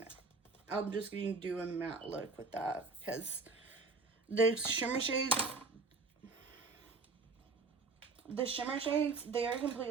I'm just going to do a matte look with that because the shimmer shades, they are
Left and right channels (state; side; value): quieter; left; 4.0 dB